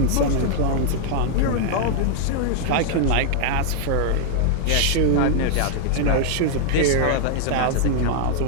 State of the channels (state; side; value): different; both; correlation 0.00